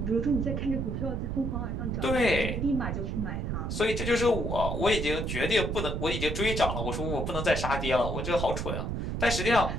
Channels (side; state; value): right; noise; rumble, 2 dB below the sound